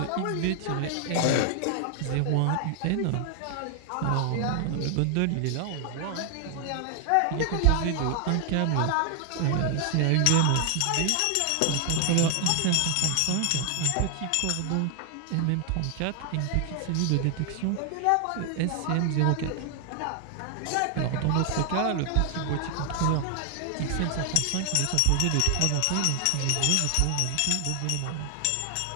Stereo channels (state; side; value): different; both; correlation 0.00